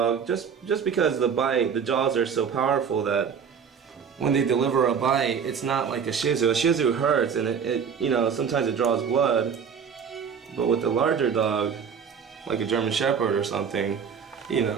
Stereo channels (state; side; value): quieter; left; 6.9 dB